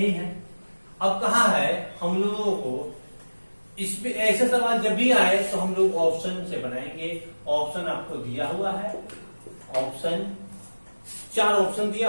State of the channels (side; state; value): both; inverted; correlation -1.00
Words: है। अब कहा है हम लोगों को इसमें ऐसे सवाल जब भी आए तो हम लोग ऑप्शन से बनाएंगे। ऑप्शन आपको दिया हुआ है, ऑप्शन 4 ऑप्शन